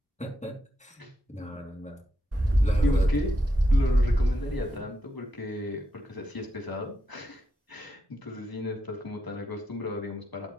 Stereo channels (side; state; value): both; normal; correlation 0.84